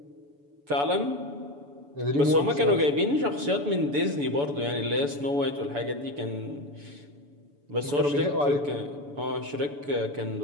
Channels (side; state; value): left; late; 7.0 ms